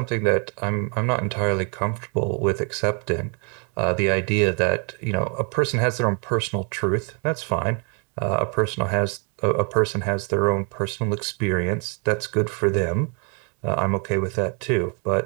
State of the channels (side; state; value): left; quieter; 37.5 dB